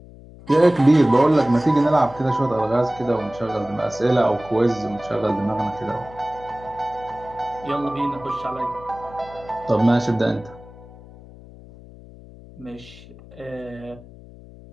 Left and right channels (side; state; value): left; noise; hum, 20 dB below the sound